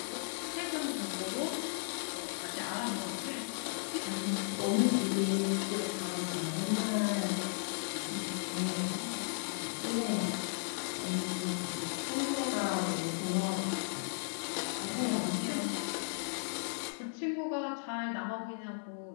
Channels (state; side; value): silent; right; digital silence